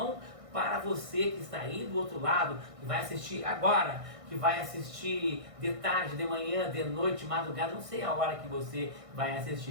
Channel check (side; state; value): left; late; 1.6 ms